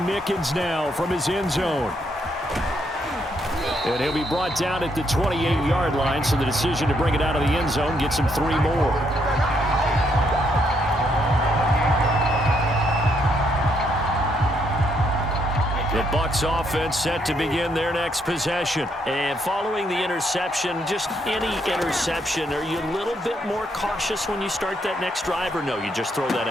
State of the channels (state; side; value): normal; both; correlation 0.74